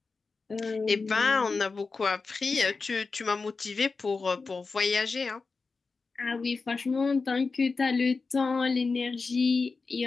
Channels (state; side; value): quieter; right; 4.3 dB